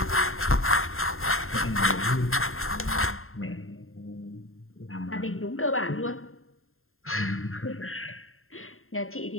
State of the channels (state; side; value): late; right; 0.61 ms